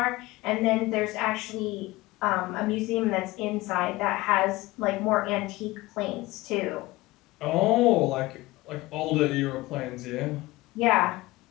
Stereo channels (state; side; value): quieter; right; 20.0 dB